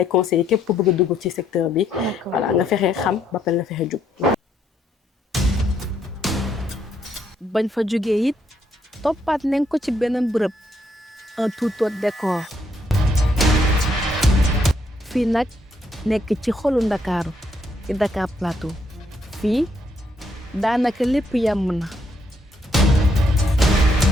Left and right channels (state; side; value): normal; both; correlation 0.73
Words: conseiller képp ku bëgg a dugg ci secteur bi voilà nga fexe xam ba pare nga fexe jub bañ fa jógee it toppaat nañ ko ci beneen bërëb un tout autre décor fii nag nekk ci xolu Ndakaaru ci Dakar Plateau fii daanaka lépp yàmm na